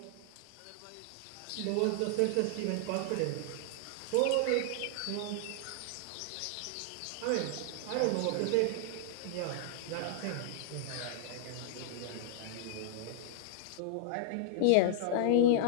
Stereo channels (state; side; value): different; both; correlation -0.01